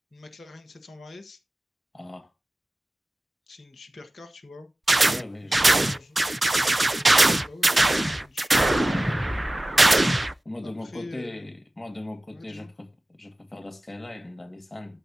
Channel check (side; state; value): both; normal; correlation 0.97